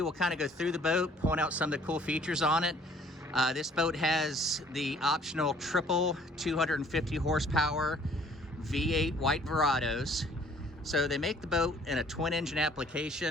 we'll kind of go through the boat, point out some of the cool features on it. This boat has the optional triple 250 horsepower V8 white Verados. So they make the boat in a twin engine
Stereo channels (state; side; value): normal; both; correlation 0.57